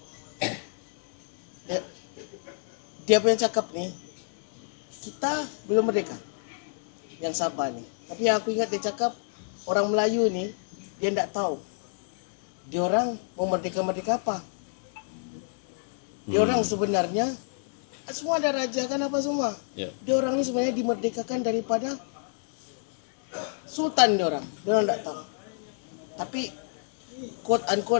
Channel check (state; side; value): silent; right; 59 dB below the other